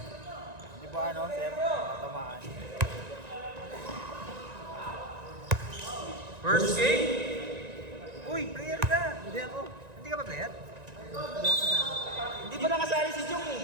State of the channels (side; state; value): left; late; 1.9 ms